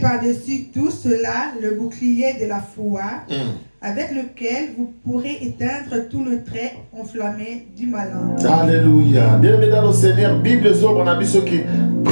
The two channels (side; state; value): both; inverted; correlation -1.00